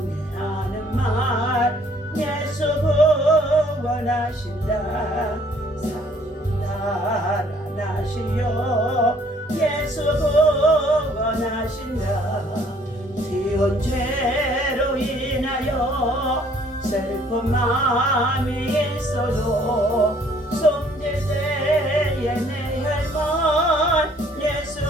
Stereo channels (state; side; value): normal; both; correlation 0.61